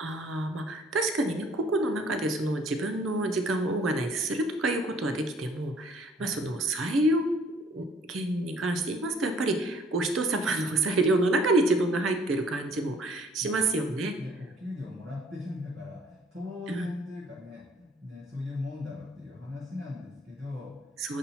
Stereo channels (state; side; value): normal; both; correlation 0.58